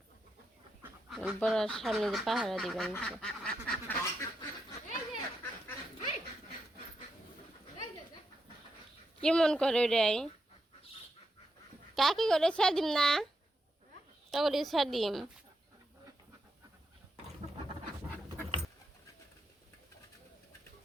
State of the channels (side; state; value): both; normal; correlation 0.84